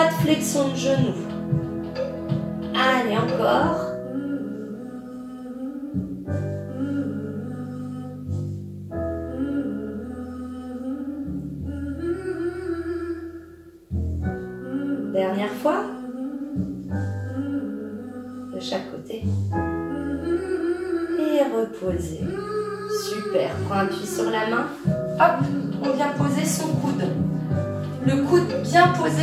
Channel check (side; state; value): both; identical; correlation 1.00